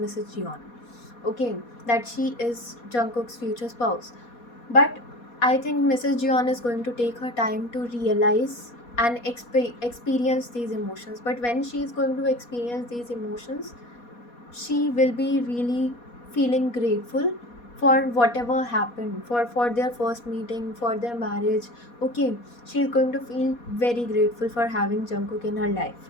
Jeon. Okay, that she is Jungkook's future spouse. But I think Mrs. Jeon is going to take her time to realize and experience these emotions. But when she is going to experience these emotions, she will be really feeling grateful for whatever happened, for their first meeting, for their marriage. Okay, she is going to feel very grateful for having Jungkook in her life.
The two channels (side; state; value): right; late; 4.2 ms